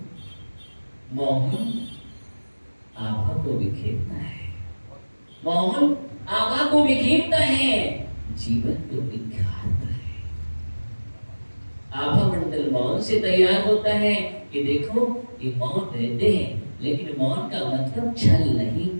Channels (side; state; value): both; inverted; correlation -1.00